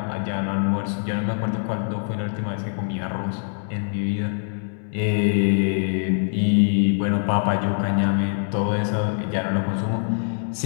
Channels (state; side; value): silent; right; 62 dB below the other